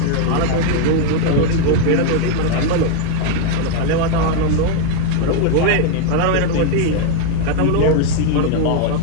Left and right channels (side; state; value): both; different; correlation 0.01